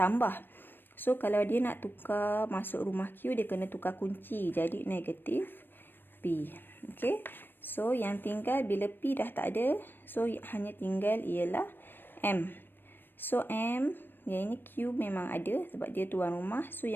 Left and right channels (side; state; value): right; late; 0.096 ms